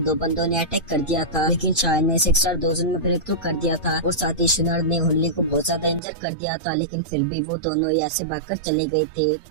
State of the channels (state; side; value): drops out; left; at 6.0 s